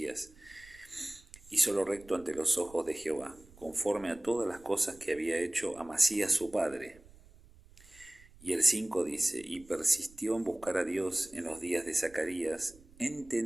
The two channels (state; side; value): noise; right; rumble, 24 dB below the sound